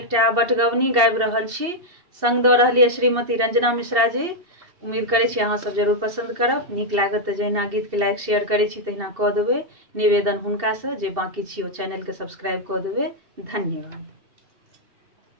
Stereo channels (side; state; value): left; late; 2.7 ms